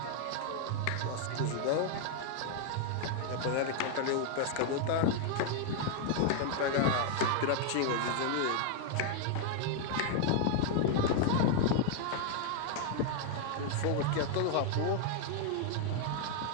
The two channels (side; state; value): both; different; correlation 0.00